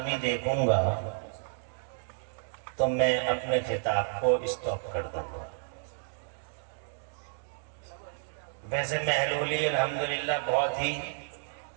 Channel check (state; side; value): silent; left; digital silence